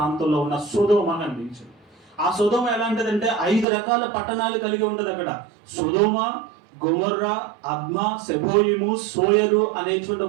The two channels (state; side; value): drops out; left; at 3.7 s